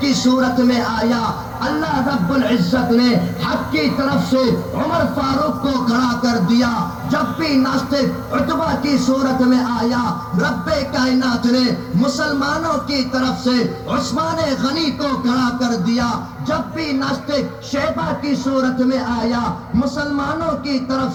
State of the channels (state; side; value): identical; both; correlation 1.00